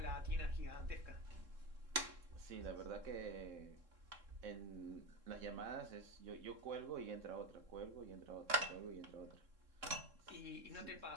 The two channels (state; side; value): late; left; 3.7 ms